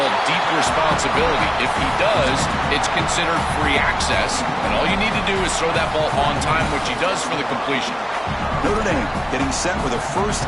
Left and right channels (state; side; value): identical; both; correlation 1.00